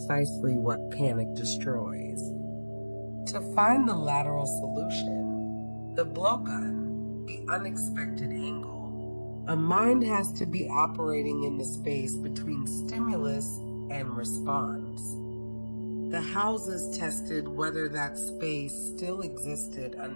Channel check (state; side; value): inverted; both; correlation -1.00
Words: what panic destroys. To find the lateral solution, the blowgun, the unexpected angle, a mind has to be operating in the space between stimulus and response. The houses tested whether that space still existed